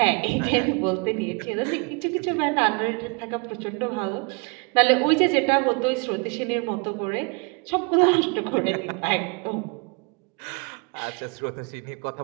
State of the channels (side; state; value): left; quieter; 31.9 dB